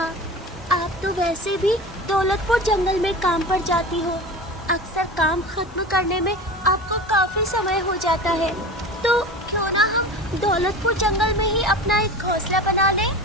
आप तो वैसे भी दौलतपुर जंगल में काम पर जाती हो। अक्सर काम खत्म करने में आपको काफी समय हो जाता है, तो क्यों ना हम दौलतपुर जंगल में ही अपना एक घोंसला बना लें?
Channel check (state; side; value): normal; both; correlation 0.33